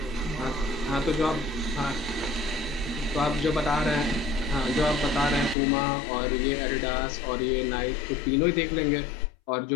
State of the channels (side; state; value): right; drops out; at 5.6 s